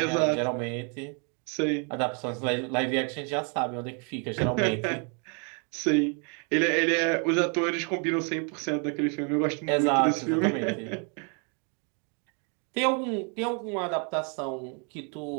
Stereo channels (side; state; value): left; quieter; 37.4 dB